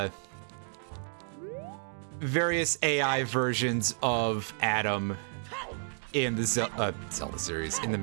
versions of Adam in the Zelda series, in the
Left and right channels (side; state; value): left; silent; digital silence